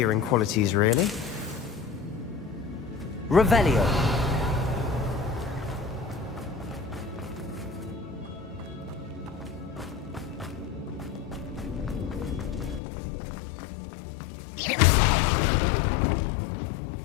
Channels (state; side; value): drops out; right; at 12.8 s